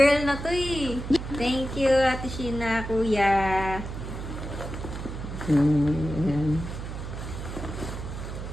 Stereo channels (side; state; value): right; noise; hum, 7 dB below the sound